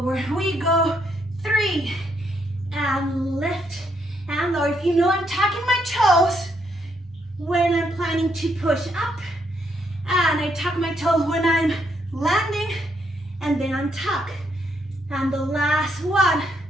We go 3 and lift and lower. If you know I'm tucking my toes when I'm planning to push up, and I tuck my toes when I'm landing, and then untuck. And the last one.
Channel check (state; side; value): normal; both; correlation 0.75